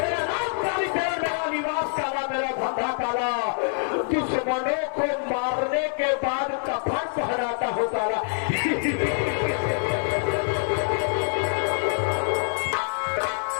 नाम कालीचरण, मेरा निवास काला, मेरा धंधा काला, दुश्मनों को मारने के बाद कफन पहनाता हूँ काला।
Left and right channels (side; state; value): right; silent; digital silence